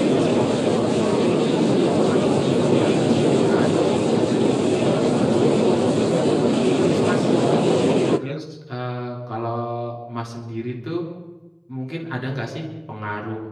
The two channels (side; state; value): both; identical; correlation 1.00